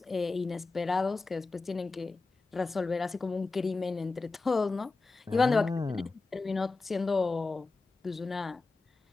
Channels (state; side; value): quieter; right; 3.7 dB